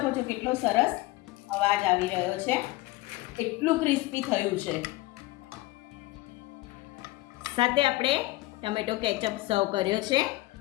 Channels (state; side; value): quieter; right; 19.2 dB